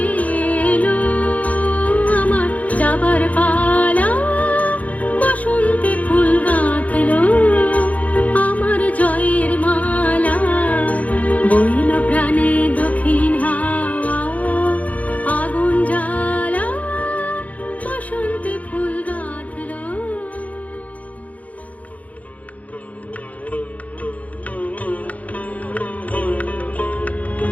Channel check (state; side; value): late; right; 0.070 ms